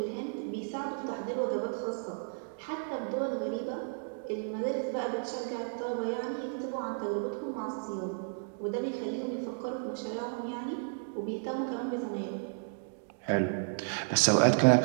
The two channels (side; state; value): left; silent; digital silence